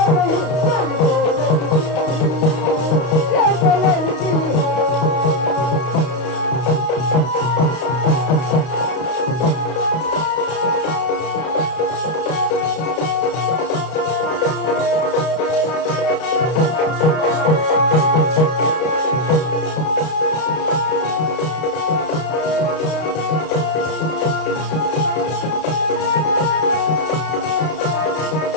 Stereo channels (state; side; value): late; right; 32 ms